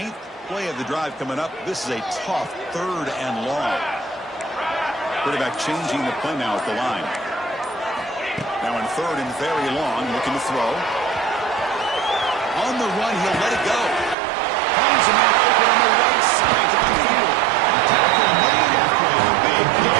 play of the drive coming up. This is a tough 3rd and long. Quarterback changing the play now at the line. Now in 3rd and very long, looking to throw. On the run, he'll let it go. Finds a man open on the right side downfield. The tackle made after a big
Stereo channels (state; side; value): drops out; left; at 14.2 s